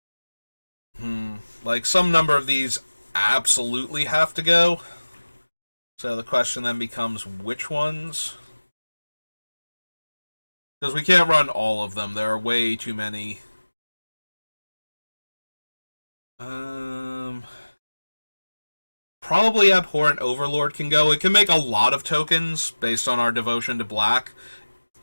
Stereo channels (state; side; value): inverted; both; correlation -1.00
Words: Like, some number of these absolutely have to go. So the question then becomes which ones? Because we can't run all of them. There are way too many. Probably Abhorrent Overlord can go. It can make a lot of tokens based on our devotion to black.